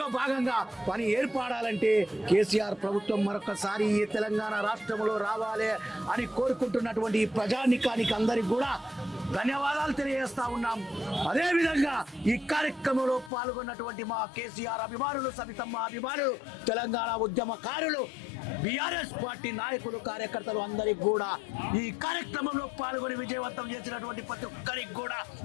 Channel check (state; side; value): drops out; right; at 13.3 s